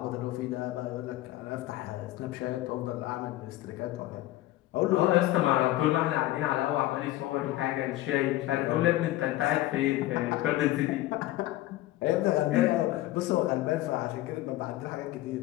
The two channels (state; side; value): quieter; right; 16.1 dB